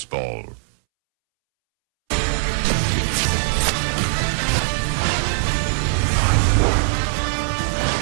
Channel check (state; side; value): silent; left; 65 dB below the other